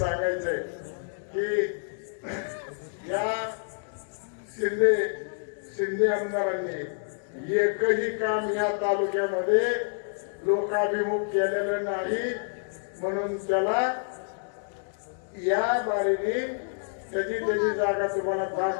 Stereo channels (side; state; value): right; silent; digital silence